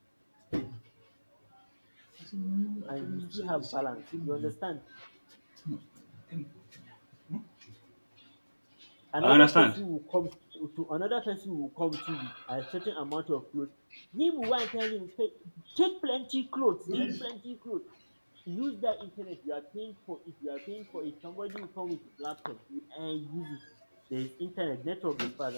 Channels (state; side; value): inverted; both; correlation -1.00